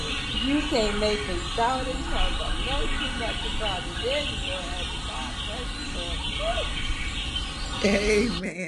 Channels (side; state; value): both; identical; correlation 1.00